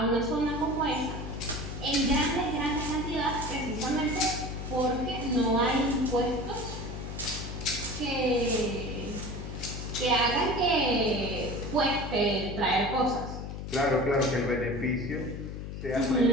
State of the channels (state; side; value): noise; left; hum, 7 dB below the sound